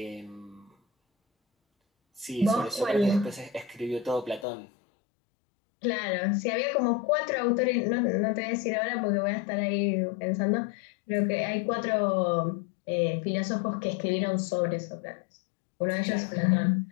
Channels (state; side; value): drops out; right; at 4.5 s